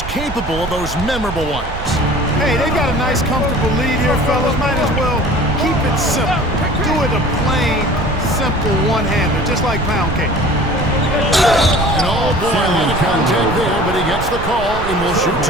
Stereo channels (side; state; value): right; noise; rumble, 9 dB below the sound